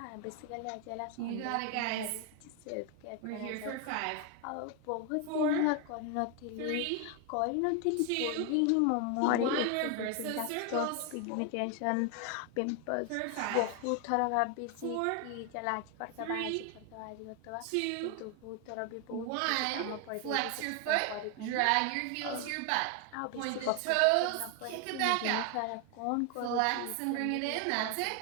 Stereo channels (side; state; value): both; different; correlation 0.01